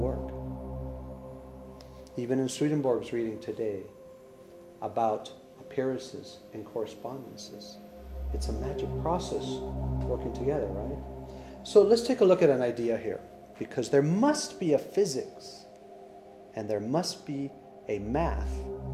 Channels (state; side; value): identical; both; correlation 1.00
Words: Even in Swedenborg's reading today about appearances and correspondences. It's a magic process working together, right? So let's take a look at an idea here, because there must be a physics and there must be a math